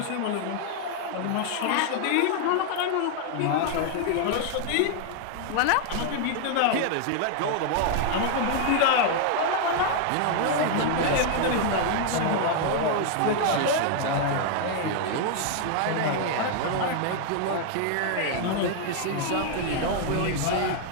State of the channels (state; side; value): different; both; correlation 0.00